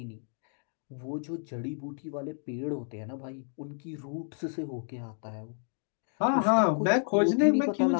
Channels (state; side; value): silent; right; 57 dB below the other